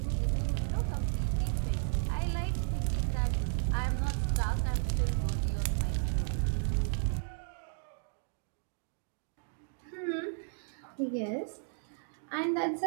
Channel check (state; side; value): silent; left; digital silence